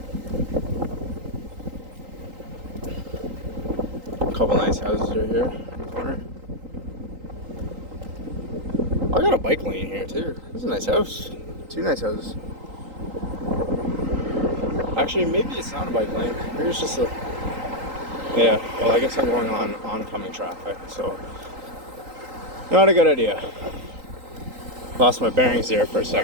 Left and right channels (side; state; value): left; late; 3.8 ms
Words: Couple nice houses right here in the corner. I got a bike lane here too. This is a nice house. 2 nice houses. Actually, maybe it's not a bike lane. Maybe it's just a... Yeah, well, I guess I'm going on oncoming traffic, so... Not a good idea. Lost my bearings there for a